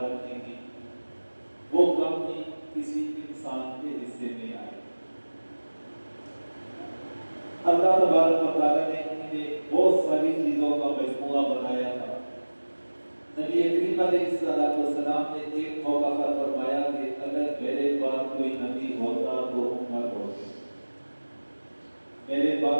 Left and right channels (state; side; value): inverted; both; correlation -1.00